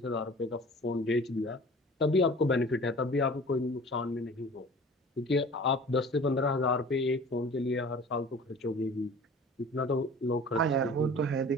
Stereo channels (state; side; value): normal; both; correlation 0.44